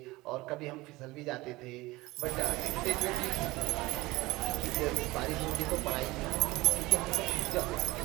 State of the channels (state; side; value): quieter; left; 20.3 dB